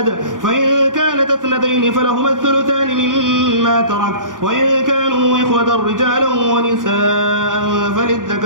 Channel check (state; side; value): late; left; 0.88 ms